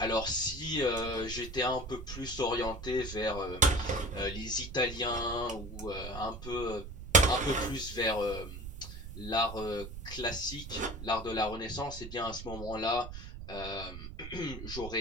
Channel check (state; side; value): noise; right; rumble, 10 dB below the sound